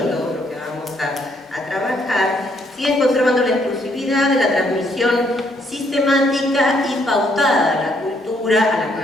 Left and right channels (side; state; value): both; normal; correlation 0.71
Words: todo lo que vamos a trabajar, siguen conservando la exclusividad de la transmisión sistemática y pautada de la cultura a las